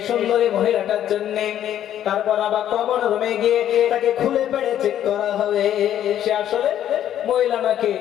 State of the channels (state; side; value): quieter; right; 11.0 dB